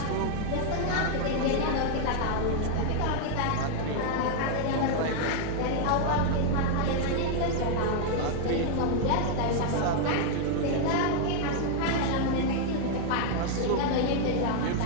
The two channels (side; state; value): both; different; correlation 0.00